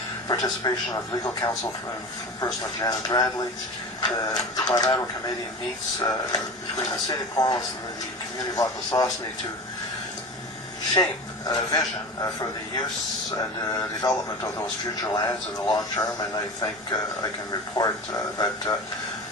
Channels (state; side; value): normal; both; correlation 0.31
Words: participation of legal counsel from person of Janet Bradley. The bilateral committee meets between the City of Cornwall and the community of Akwesasne to shape a vision for the use and development of those future lands in the long term, and I think I can report that